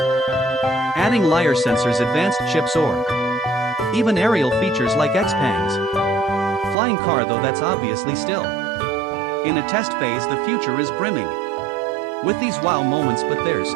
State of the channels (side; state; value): left; drops out; at 6.8 s